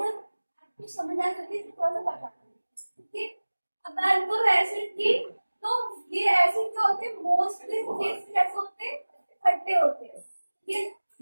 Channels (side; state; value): both; inverted; correlation -1.00